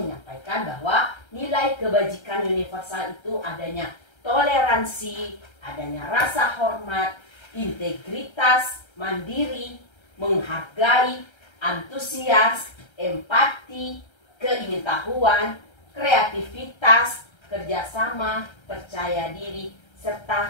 bahwa nilai kebajikan universal itu adanya toleransi, adanya rasa hormat, integritas, mandiri, menghargai, antusias, empati, keingintahuan, kreativitas, kerjasama, percaya diri,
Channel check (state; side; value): late; right; 1.3 ms